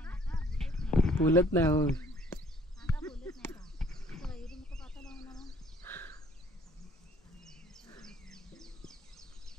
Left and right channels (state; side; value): normal; both; correlation 0.59